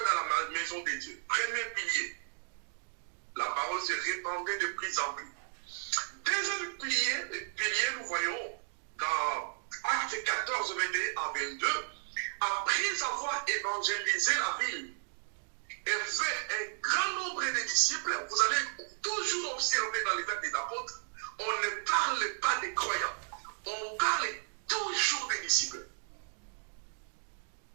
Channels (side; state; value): left; silent; digital silence